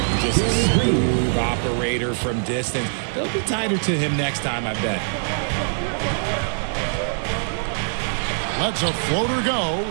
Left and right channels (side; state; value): left; silent; digital silence